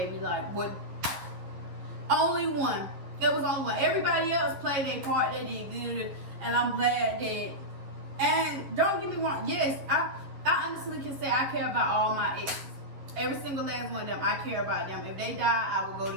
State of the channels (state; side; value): late; left; 11 ms